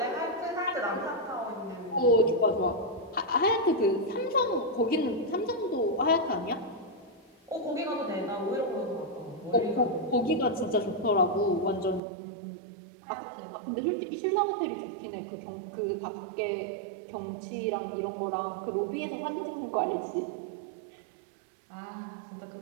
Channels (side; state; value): left; drops out; at 12.0 s